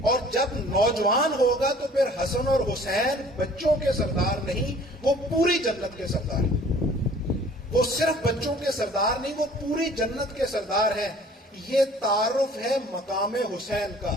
اور جب نوجوان ہوگا تو پھر حسن اور حسین بچوں کے سردار نہیں، وہ پوری جنت کے سردار ہیں. وہ صرف بچوں کے سردار نہیں، وہ پوری جنت کے سردار ہیں. یہ تعارف ہے مقام حسین کا،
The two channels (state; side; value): normal; both; correlation 0.51